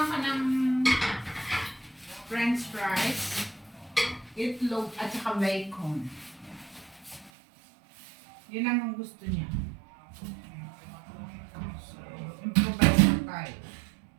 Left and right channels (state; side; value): drops out; left; at 7.3 s